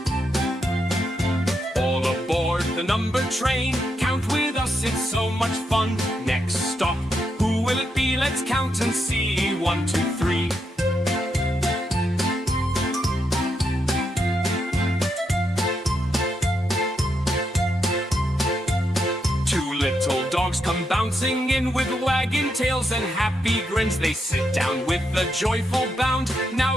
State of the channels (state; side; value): normal; both; correlation 0.82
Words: All aboard the number train, count with us, it's so much fun. Next stop, who will it be? Let's count and see. 1, 2, 3. Two little dogs come bouncing in with wagging tails and happy grins. They sit down with a joyful bound.